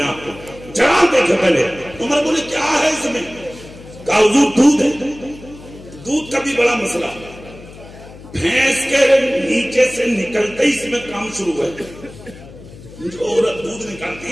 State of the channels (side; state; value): left; noise; hum, 18 dB below the sound